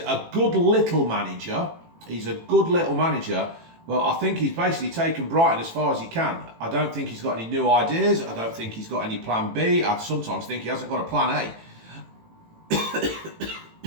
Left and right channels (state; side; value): late; left; 18 ms